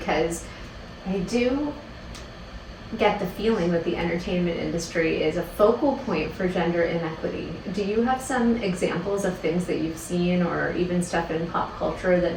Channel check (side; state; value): both; identical; correlation 1.00